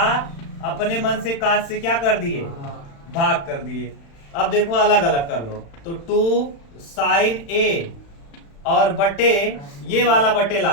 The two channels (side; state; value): right; late; 35 ms